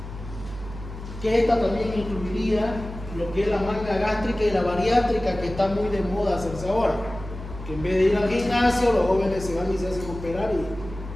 Que esta también incluiría lo que es la manga gástrica y la bariátrica, que está muy de moda hacerse ahora. Que en vez de ir al gimnasio, los jóvenes se van y se hacen operar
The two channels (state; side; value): noise; right; hum, 12 dB below the sound